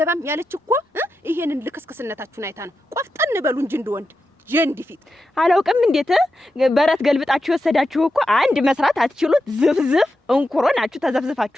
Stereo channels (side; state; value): both; normal; correlation 0.89